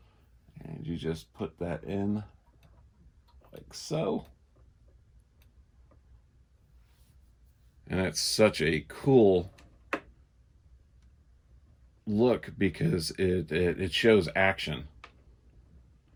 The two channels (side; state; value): both; identical; correlation 1.00